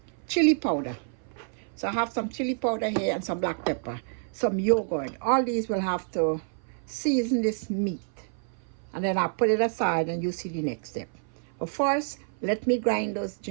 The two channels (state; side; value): silent; left; 56 dB below the other